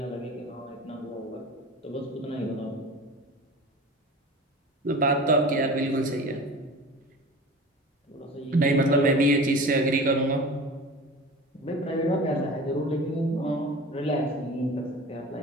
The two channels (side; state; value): both; normal; correlation 0.37